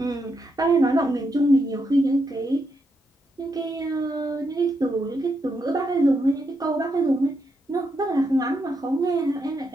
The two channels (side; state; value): both; normal; correlation 0.81